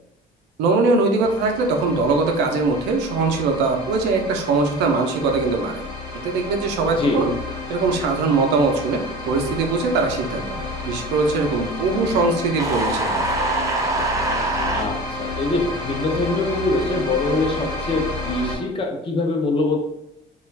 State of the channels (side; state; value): both; normal; correlation 0.36